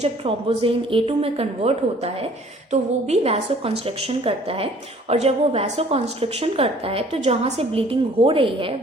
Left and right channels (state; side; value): normal; both; correlation 0.55